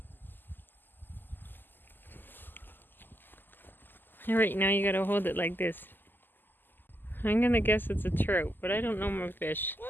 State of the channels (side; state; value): right; late; 0.091 ms